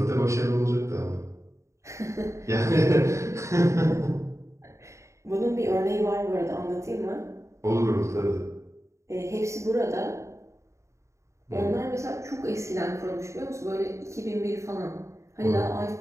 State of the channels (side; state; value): left; late; 0.14 ms